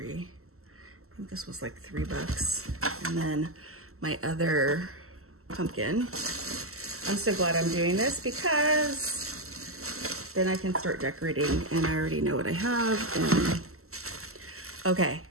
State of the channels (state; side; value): late; left; 0.63 ms